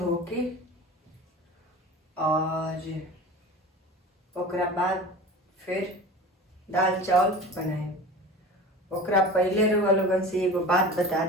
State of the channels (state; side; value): normal; both; correlation 0.35